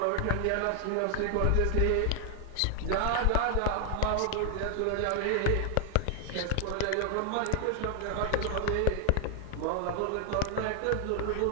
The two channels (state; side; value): different; both; correlation 0.00